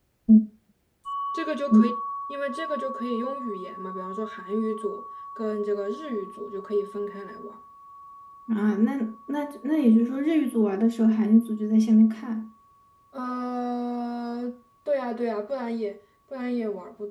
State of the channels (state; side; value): identical; both; correlation 1.00